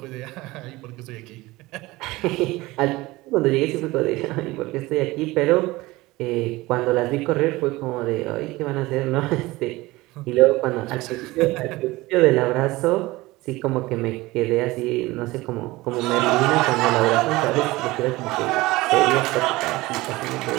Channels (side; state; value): left; quieter; 20.1 dB